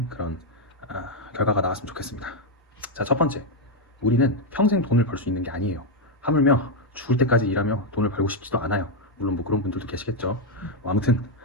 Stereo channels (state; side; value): normal; both; correlation 0.02